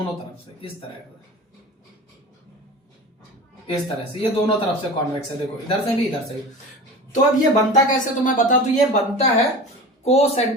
तरफ से इस तरह से ये दोनों तरफ से कॉन्वेक्स है। देखो इधर से भी इधर से भी। तो अब ये बनता कैसे तो मैं बता दूं, ये बनता है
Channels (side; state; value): both; normal; correlation 0.34